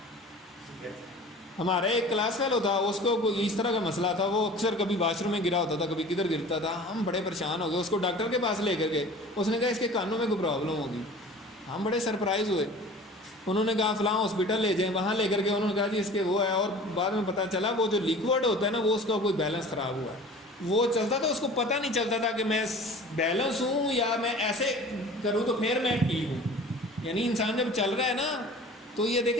ہمارا ایک کلاس فیلو تھا, اس کو کوئی اس طرح کا مسئلہ تھا, وہ اکثر کبھی واش روم میں گرا ہوتا تھا, کبھی کدھر گرتا تھا. ہم بڑے پریشان ہو گئے, اس کو ڈاکٹر کے پاس لے کر گئے. اس نے کہا اس کے کانوں میں کوئی پرابلم ہوگی. ہم بڑے سرپرائز ہوئے. انہوں نے کہا فلاں ہاسپٹل لے جائیں, وہاں لے کر کے انہوں نے کہا جی اس کے وہ ہے, اور بعد میں پتہ چلا وہ جو لیکوڈ ہوتا ہے نا وہ اس کا کوئی بیلنس خراب ہوا ہے. وہ چلتا تھا, اس کو پتہ نہیں چلتا تھا کہ میں بیلنس ہوں یا میں ایسے کروں تو پھر میں ٹھیک ہوں. یعنی انسان جب چل رہا ہے نا تو یہ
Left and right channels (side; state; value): both; normal; correlation 0.42